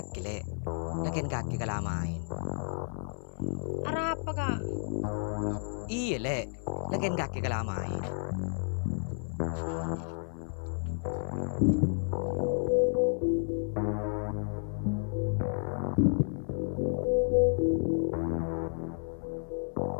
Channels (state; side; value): silent; right; 57 dB below the other